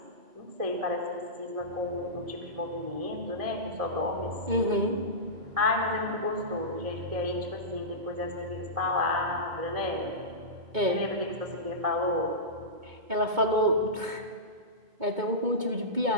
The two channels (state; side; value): late; left; 2.2 ms